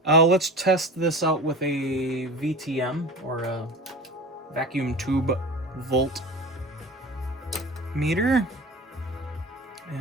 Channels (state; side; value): normal; both; correlation 0.34